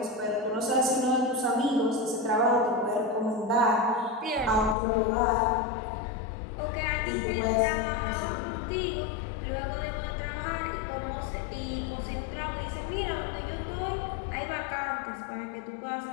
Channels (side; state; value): right; drops out; at 4.8 s